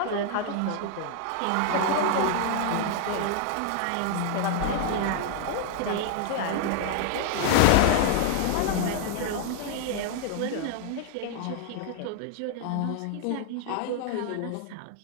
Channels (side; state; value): both; different; correlation 0.00